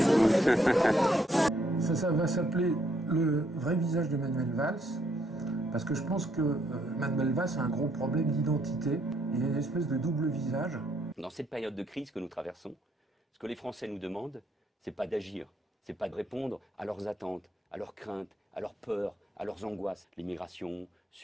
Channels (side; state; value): both; normal; correlation 0.71